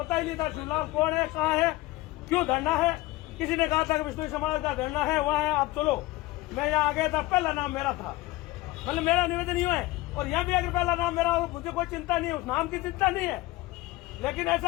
ही नहीं था शिवलाल कौन है, कहाँ है, क्यों धरना है। किसी ने कहा था कि विष्णु समाज का धरना है, वहाँ है, आप चलो। मैं यहाँ आ गया था, पहला नाम मेरा था, मतलब मेरा निवेदन ही है। और यहाँ भी अगर पहला नाम मेरा हो, मुझे कोई चिंता नहीं है, उस नाम की चिंता नहीं है। लेकिन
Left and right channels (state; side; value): quieter; right; 19.3 dB